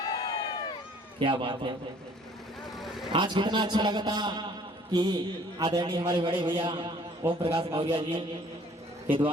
क्या बात है, आज कितना अच्छा लगा था कि आदरणीय हमारे बड़े भैया ओम प्रकाश मौर्य जी के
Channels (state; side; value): normal; both; correlation 0.56